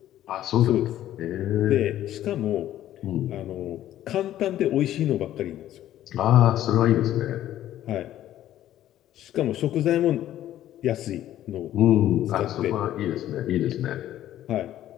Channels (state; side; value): quieter; right; 12.7 dB